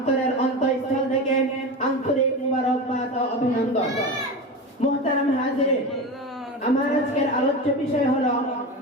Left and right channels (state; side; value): normal; both; correlation 0.25